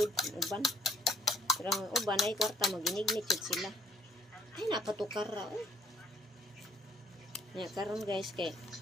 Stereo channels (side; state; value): both; normal; correlation 0.64